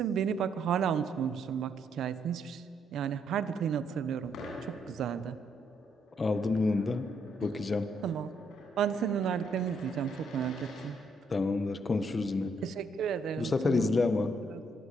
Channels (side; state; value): both; normal; correlation 0.73